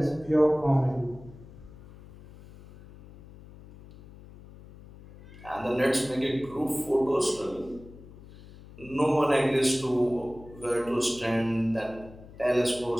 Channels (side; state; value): left; noise; hum, 19 dB below the sound